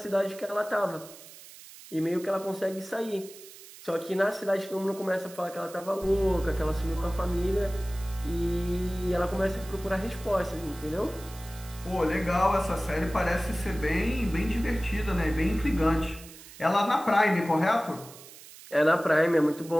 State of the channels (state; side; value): noise; right; hiss, 18 dB below the sound